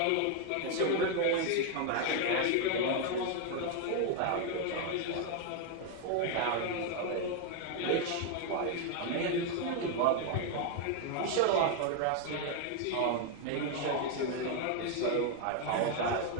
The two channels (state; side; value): different; both; correlation 0.01